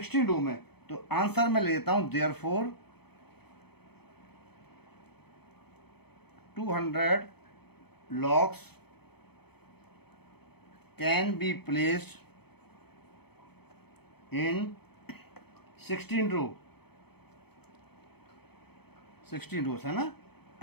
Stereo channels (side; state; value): right; late; 0.97 ms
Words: रो में। तो आंसर में ले लेता हूं therefore 200 logs can be placed in 16 रो, 16 रोज है ना,